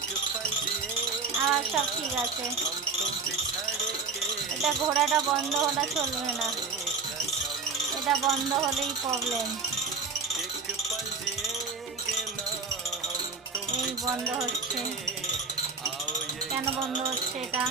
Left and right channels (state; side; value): quieter; left; 4.6 dB